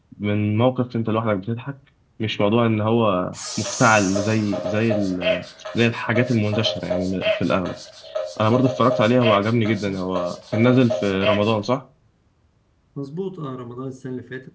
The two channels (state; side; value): identical; both; correlation 1.00